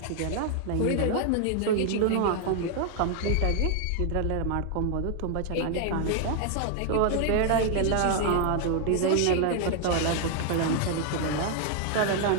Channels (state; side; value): different; both; correlation 0.00